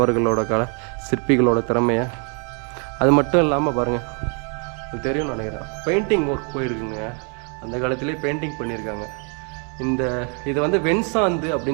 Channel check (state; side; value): quieter; left; 38.2 dB